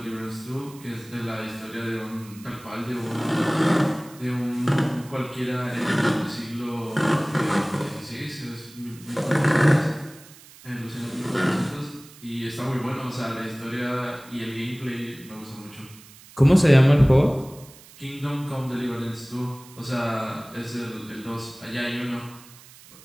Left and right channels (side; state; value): right; noise; hiss, 21 dB below the sound